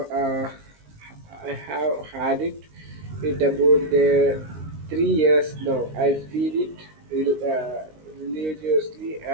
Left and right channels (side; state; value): left; late; 19 ms